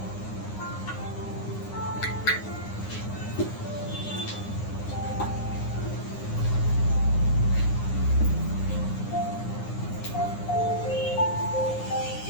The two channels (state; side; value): late; right; 9.7 ms